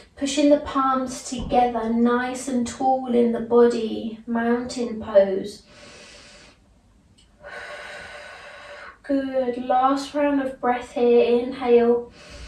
Pushing the palms together, nice and tall in the body, mountain pose. Good. Last round of breath here. Inhale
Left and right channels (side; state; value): both; identical; correlation 1.00